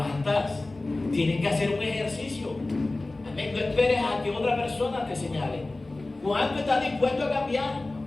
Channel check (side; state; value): right; quieter; 3.0 dB